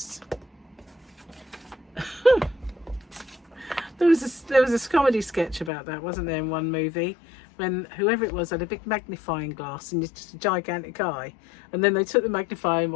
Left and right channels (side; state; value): right; drops out; at 5.7 s